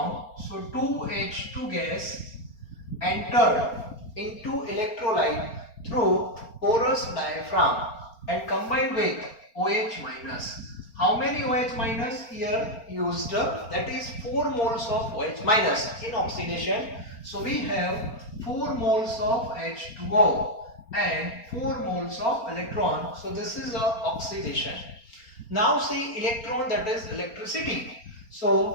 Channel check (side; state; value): right; late; 4.3 ms